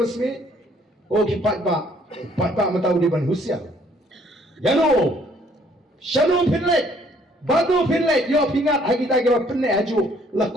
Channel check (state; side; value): normal; both; correlation 0.63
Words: smith oh kipat ba matau di ban husia yano shanu pinlet badu pinlet yo pingat ha kita ka penne haju